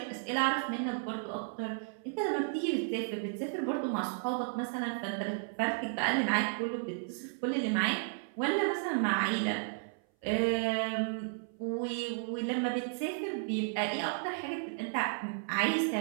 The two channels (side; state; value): left; silent; 55 dB below the other